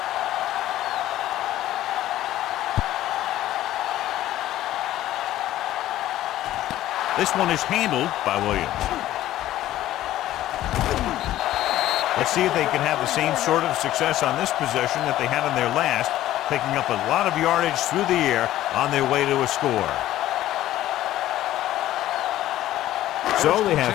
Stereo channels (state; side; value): quieter; right; 14.0 dB